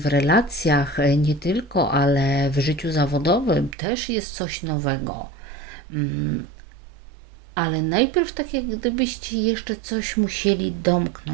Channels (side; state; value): left; drops out; at 3.8 s